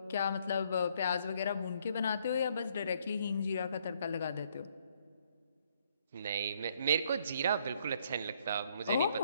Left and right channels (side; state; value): both; inverted; correlation -0.68